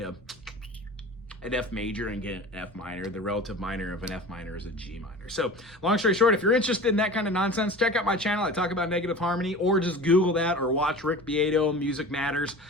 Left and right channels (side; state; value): both; normal; correlation 0.37